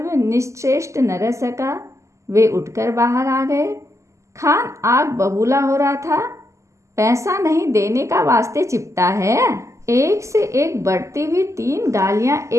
वे निश्चेष्ट न रह सका। वे उठकर बाहर आ गए। खान आग बबूला हो रहा था। पैसा नहीं देने का वास्ते चिपटा है। एक से एक बढ़ती हुई 3 गालियां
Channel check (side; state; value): left; late; 0.14 ms